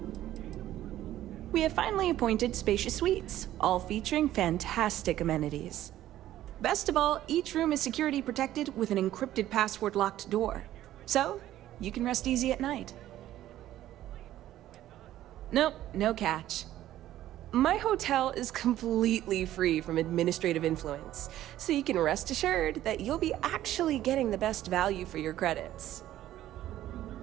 We have finally appointed spacious suites, all featuring fantastic amenities. Best of all, each room is security protected with an encrypted password-locked door. So, you can rest easy at night. Nope, no catch. My hotel is completely free from administrative influence, so you can rest assured that you'll be actually getting the best value for your credits.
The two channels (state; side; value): quieter; left; 13.3 dB